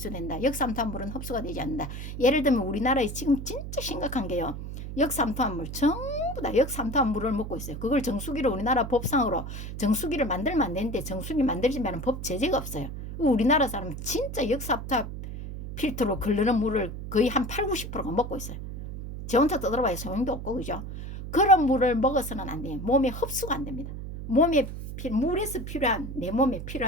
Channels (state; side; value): noise; right; hum, 8 dB below the sound